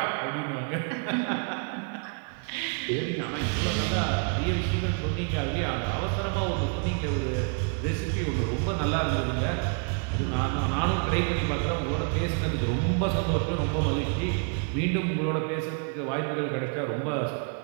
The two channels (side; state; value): left; quieter; 40.0 dB